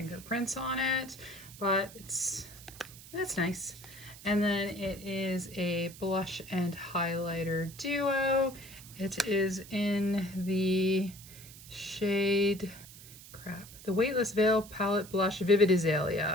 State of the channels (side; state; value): right; noise; hiss, 17 dB below the sound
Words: on it, but that's nice. And then it is a blush and highlighter duo. It is in the shade, the Weightless Veil Palette Blush Vivid